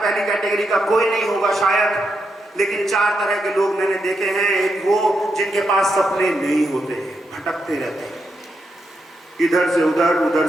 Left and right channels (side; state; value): both; normal; correlation 0.83